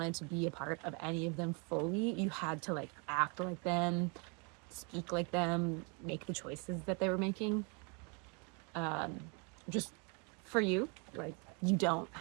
to be a part of any of them fully, you had to like act like them, speak like them, make the choices that they were making. Just for you, like you don't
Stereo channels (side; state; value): left; quieter; 34.0 dB